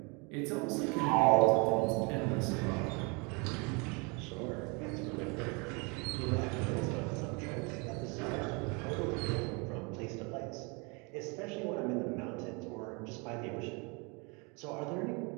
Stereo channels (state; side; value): quieter; left; 30.9 dB